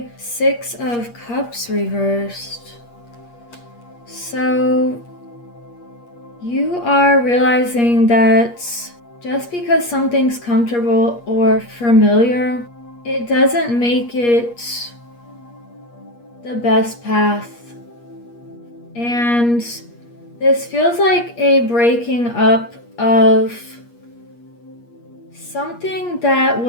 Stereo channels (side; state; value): right; late; 8.4 ms